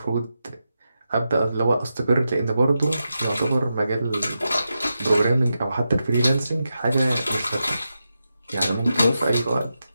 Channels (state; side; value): inverted; both; correlation -0.89